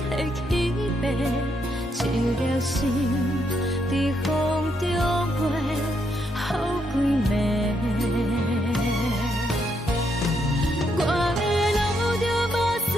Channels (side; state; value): both; normal; correlation 0.77